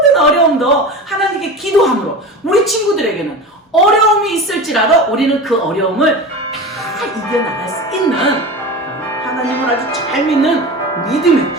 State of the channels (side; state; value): both; normal; correlation 0.30